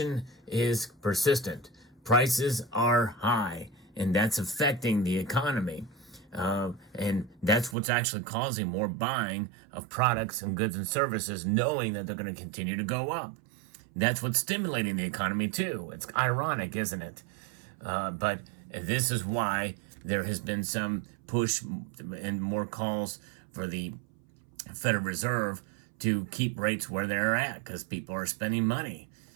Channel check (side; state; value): left; drops out; at 7.8 s